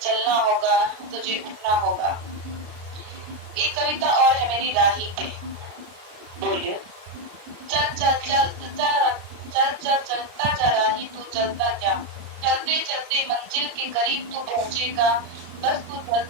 चलना होगा। तुझे उठना होगा। एक कविता और है मेरी राही पे। बोलिए। चल चल चल चलता जा राही तू चलता जा, चलते चलते मंजिल के करीब तू पहुंचेगा। बस तू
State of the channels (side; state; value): left; late; 33 ms